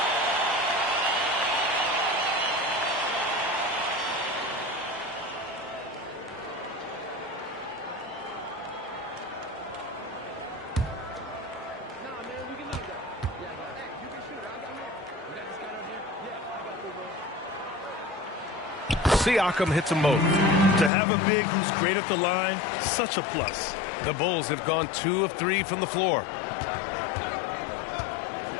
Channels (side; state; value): right; drops out; at 20.9 s